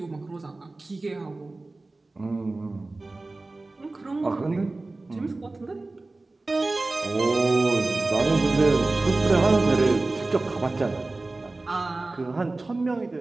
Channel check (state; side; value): quieter; left; 3.2 dB